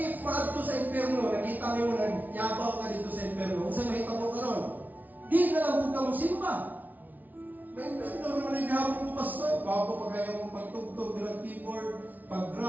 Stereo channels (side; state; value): left; late; 0.079 ms